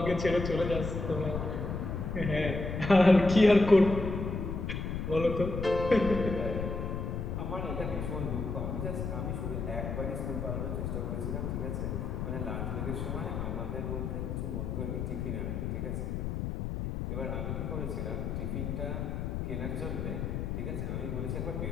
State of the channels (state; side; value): noise; left; rumble, 3 dB below the sound